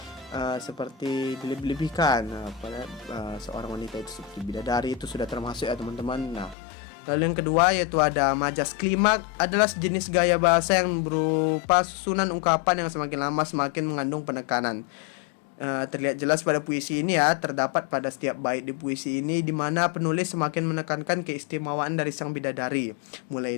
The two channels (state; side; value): drops out; right; at 6.6 s